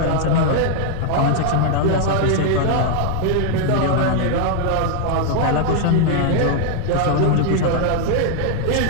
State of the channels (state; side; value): different; both; correlation 0.00